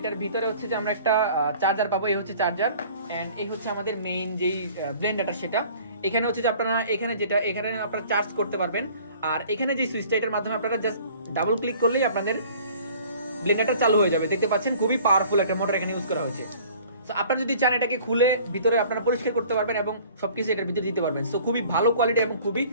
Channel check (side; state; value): both; inverted; correlation -0.50